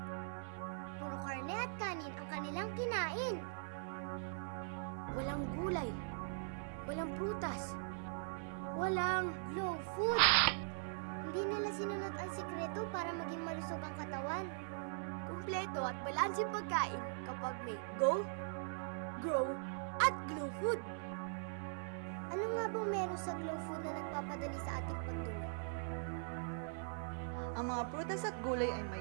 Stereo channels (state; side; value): silent; left; digital silence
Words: Puro karne at kanin ang kanilang kinain. Walang gulay. Walang prutas. Walang Glow food! Hindi nila sinunod ang sikreto para maging malusog ang katawan. kumpleto at balanseng pagkain kapag may go, grow, at glow food. Ano nga bang meron sa glow food na nagpapadali sa ating pagdumi? Ang mga prutas at gulay ay